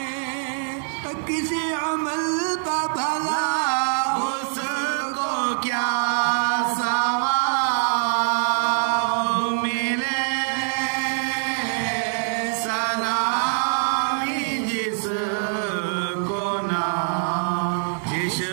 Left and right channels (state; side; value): silent; left; 63 dB below the other